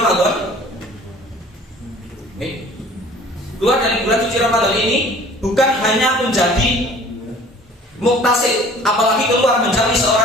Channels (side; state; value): both; normal; correlation 0.49